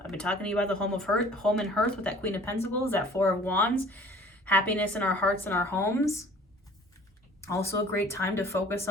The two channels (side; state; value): both; normal; correlation 0.50